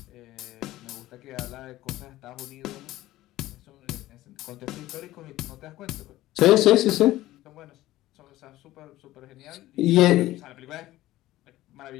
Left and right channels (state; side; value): quieter; right; 16.0 dB